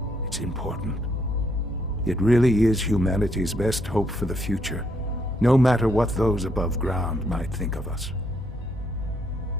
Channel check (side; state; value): both; normal; correlation 0.73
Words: It's important. It really is humanity's best hope for the future, no matter what those above ground might think of us.